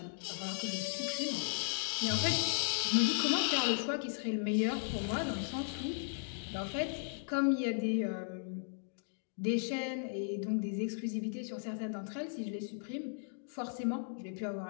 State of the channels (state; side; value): silent; right; digital silence